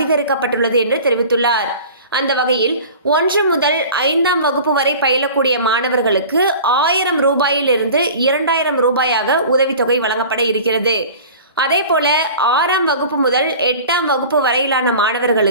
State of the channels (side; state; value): both; inverted; correlation -0.40